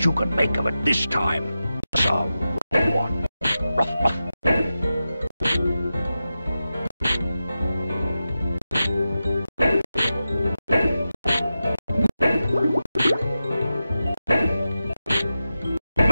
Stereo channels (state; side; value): inverted; both; correlation -0.92